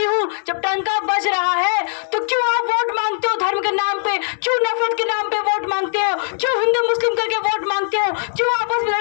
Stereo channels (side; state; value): right; silent; digital silence